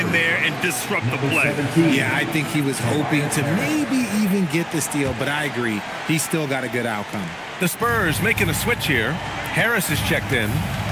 there and disrupt the play. Yeah, I think he was hoping to maybe even get the steal, but I agree. He still got a good outcome. The Spurs making a switch here. Harris is checked in.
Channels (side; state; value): both; identical; correlation 1.00